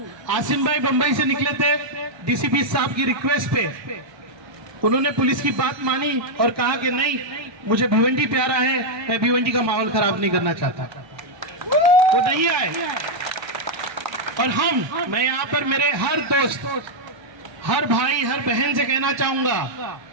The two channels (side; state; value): left; late; 1.3 ms